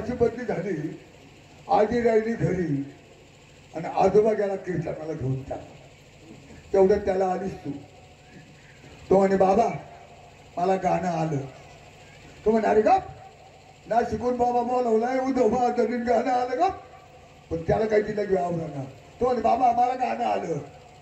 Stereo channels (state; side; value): identical; both; correlation 1.00